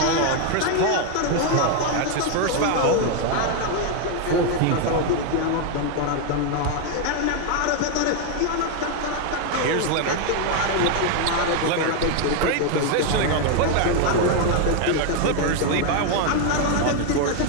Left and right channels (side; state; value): both; different; correlation 0.01